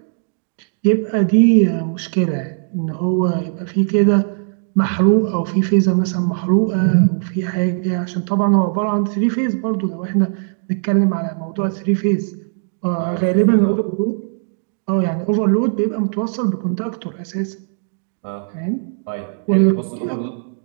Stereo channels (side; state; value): left; silent; digital silence